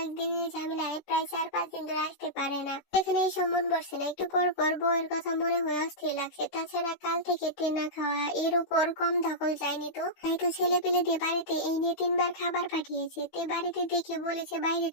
ঝামেলায় প্রায় 4-5 দিন ধরে আসতে পারে না। এখানে এসে মন বসছে না। একটু পর পর বউয়ের কথা মনে হয়ে অস্থির লাগছে। তাছাড়া কাল থেকে তে না খাওয়া, এর উপর কম ধকল যায়নি তো। তাই তো ছেলে পেলে দিয়ে বাড়িতে এই নিয়ে 3বার খাবার পাঠিয়েছে। তে বাড়িতে দেখে বলেছে বাইরে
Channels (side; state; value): right; late; 16 ms